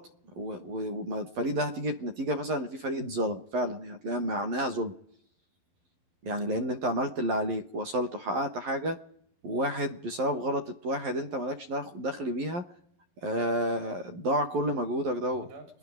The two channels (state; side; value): late; left; 11 ms